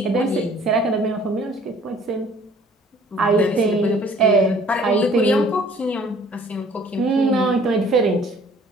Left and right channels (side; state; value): both; normal; correlation 0.54